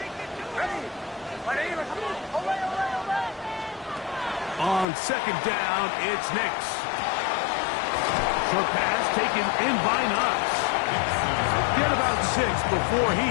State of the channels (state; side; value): drops out; right; at 4.9 s